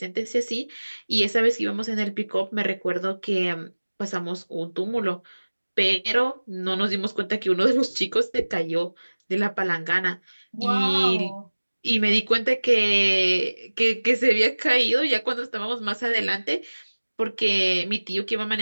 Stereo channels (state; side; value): inverted; both; correlation -1.00